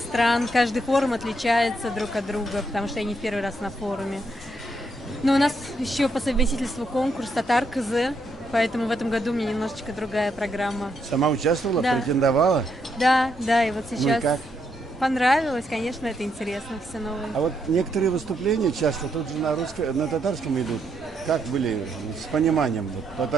Каждый форум отличается друг от друга, потому что я не в первый раз на форуме. Но у нас еще по совместительству конкурс «Татар КЗ», поэтому в этом году у меня немножечко другая программа. Сама участвовала, да. Претендовала? Да, и вот сейчас... Ну и как? Понравилось, конечно, это интересно, все новое. А вот некоторые выступления часто тут же на татарском идут. Как были с пониманием? Вот,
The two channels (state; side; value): normal; both; correlation 0.77